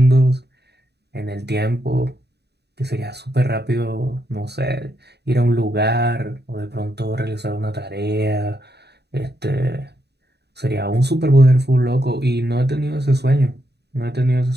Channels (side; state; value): left; late; 0.48 ms